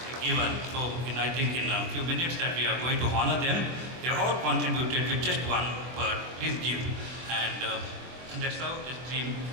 given. So I think in a few minutes that we are going to honor them. They all contributed with just one word, please give. And that's how this dream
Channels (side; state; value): left; late; 24 ms